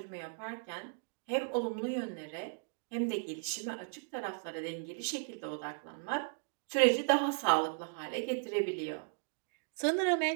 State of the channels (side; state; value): left; silent; digital silence